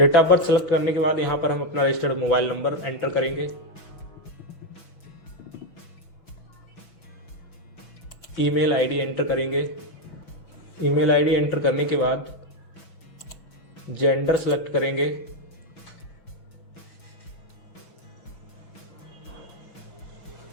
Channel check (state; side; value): late; right; 6.1 ms